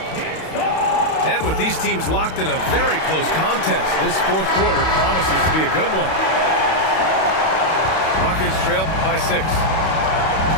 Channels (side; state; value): right; late; 31 ms